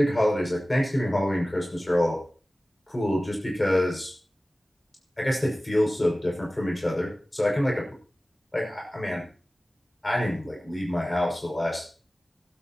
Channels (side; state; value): both; normal; correlation 0.97